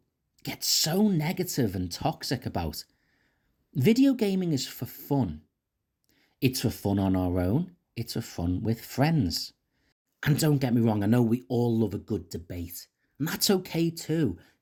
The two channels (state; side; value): identical; both; correlation 1.00